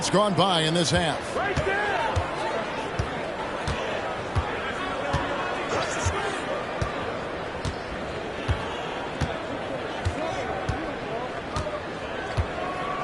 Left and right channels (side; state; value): both; identical; correlation 1.00